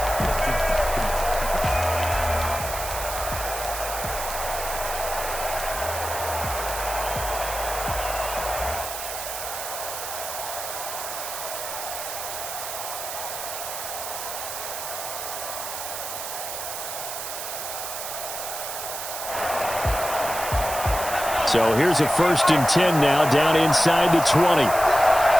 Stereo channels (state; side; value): noise; right; hiss, 6 dB below the sound